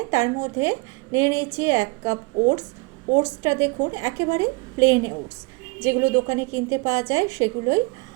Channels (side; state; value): left; quieter; 28.7 dB